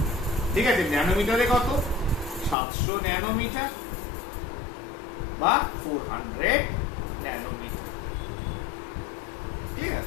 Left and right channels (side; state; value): right; drops out; at 2.6 s